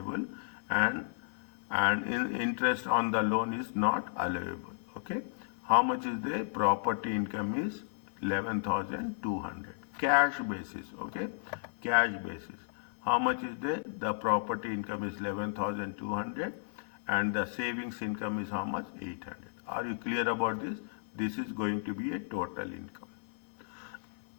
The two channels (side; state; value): right; silent; 55 dB below the other